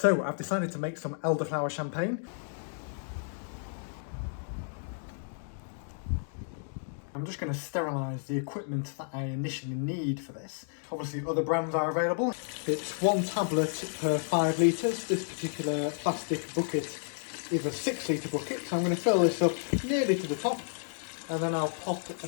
So I've decided to make some elderflower champagne. I'm just going to sterilise the equipment that I initially need for this. Obviously other brands are available. It's 1 tablet per 5 litres. This particular plastic bucket is a 6 litre bucket, so I'm going to fill this up nearly to the top, and then I'll pop a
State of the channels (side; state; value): right; silent; digital silence